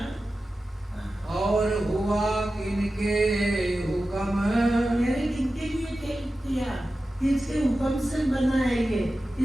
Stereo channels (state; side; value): normal; both; correlation 0.94